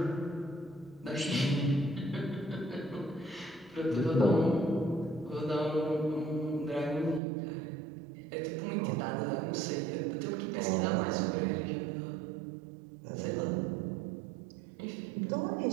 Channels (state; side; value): drops out; left; at 7.2 s